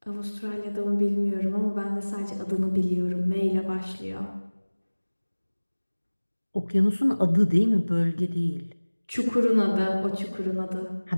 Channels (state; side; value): inverted; both; correlation -1.00